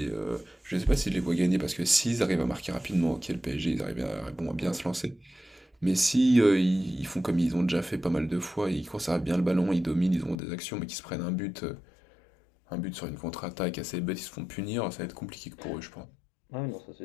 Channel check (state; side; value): drops out; right; at 10.4 s